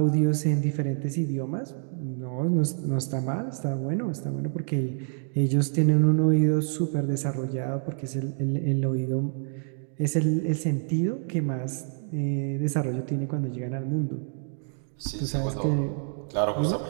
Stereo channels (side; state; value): left; silent; 60 dB below the other